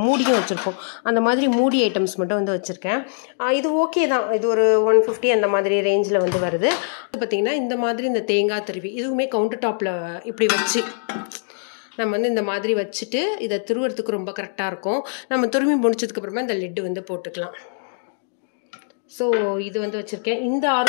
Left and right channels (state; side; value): silent; right; digital silence